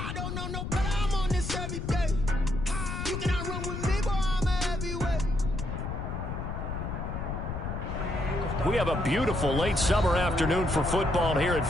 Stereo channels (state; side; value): noise; left; rumble, 4 dB below the sound